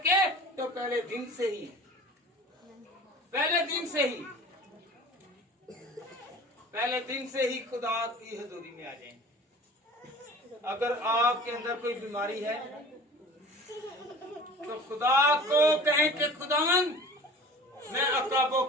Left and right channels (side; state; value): both; normal; correlation 0.42